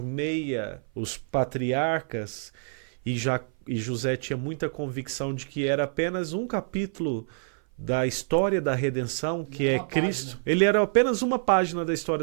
os patriarcas, e José tinha muita convicção de que era apenas um capítulo da história da redenção, que é Cristo. Ele era apenas uma página da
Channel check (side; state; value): left; silent; 56 dB below the other